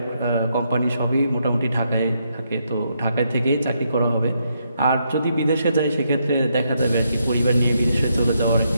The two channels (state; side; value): inverted; both; correlation -0.78